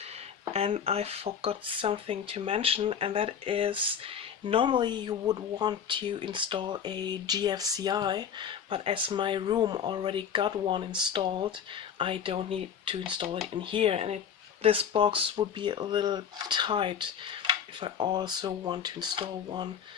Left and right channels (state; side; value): quieter; right; 7.9 dB